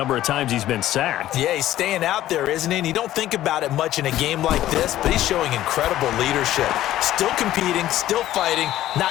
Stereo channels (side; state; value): right; quieter; 13.7 dB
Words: of times he's been sacked. Yeah, he's staying out there, isn't he? And you don't think about it much in a game like this, but he's showing incredible leadership. Still competing, still fighting,